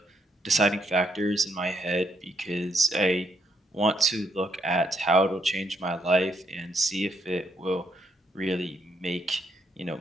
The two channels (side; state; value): both; normal; correlation 0.74